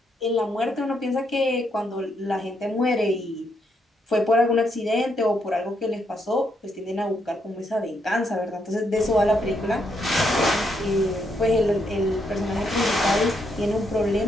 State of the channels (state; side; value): normal; both; correlation 0.77